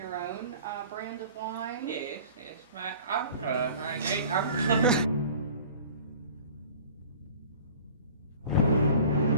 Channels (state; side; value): inverted; both; correlation -0.45